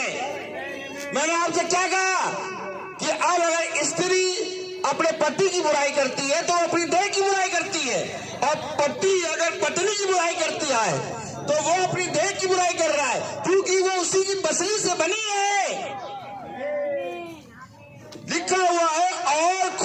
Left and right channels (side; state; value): both; identical; correlation 1.00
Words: मैंने आपसे क्या कहा कि अब अगर स्त्री अपने पति की बुराई करती है तो अपनी देह की बुराई करती है, और पति अगर पत्नी की बुराई करती है तो वो अपनी देह की बुराई कर रहा है, क्योंकि वो उसी की पसली से बनी है। लिखा हुआ है और